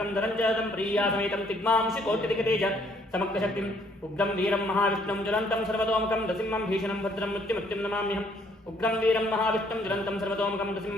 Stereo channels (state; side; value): normal; both; correlation 0.65